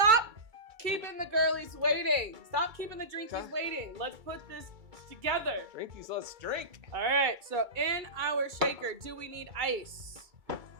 keeping the girlies waiting. Stop keeping the drinkies waiting. Let's put this together. Drinkies, let's drink. All right, so in our shaker, do we need ice? I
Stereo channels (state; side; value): late; left; 2.3 ms